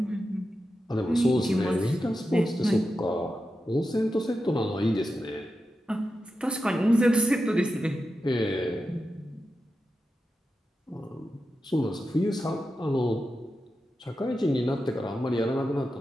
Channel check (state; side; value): normal; both; correlation 0.90